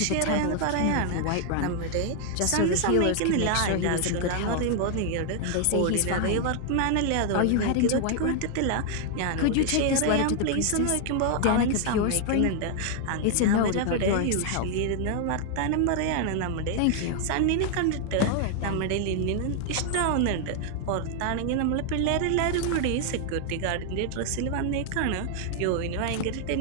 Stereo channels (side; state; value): both; different; correlation 0.00